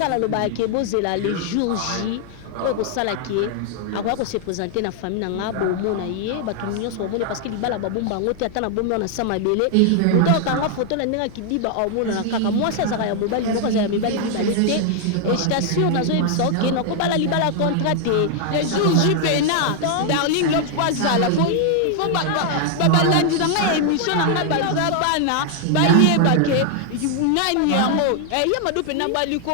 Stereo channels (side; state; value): both; different; correlation 0.00